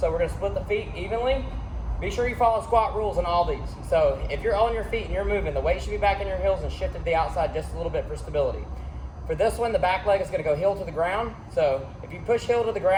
we're going to split the feet evenly. Be sure you follow squat rules on all these. So if you're on your feet and you're moving, the weight should be back in your heels and shifted to the outside just a little bit for stability. For this one, the back leg is going to go heel to the ground. So if you push heel to the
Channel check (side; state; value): both; identical; correlation 1.00